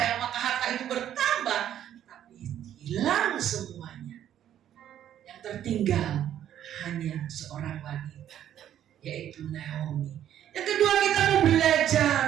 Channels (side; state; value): left; quieter; 10.8 dB